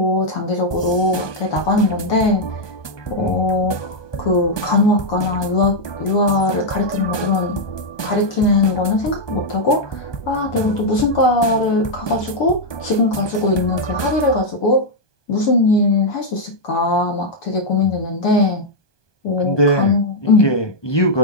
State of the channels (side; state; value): right; late; 1.2 ms